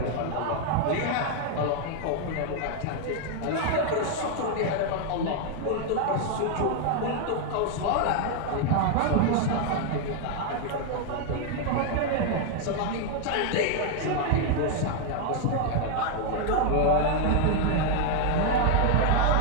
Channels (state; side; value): different; both; correlation 0.00